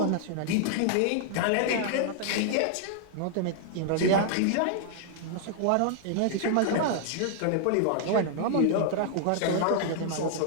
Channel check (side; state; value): both; different; correlation -0.01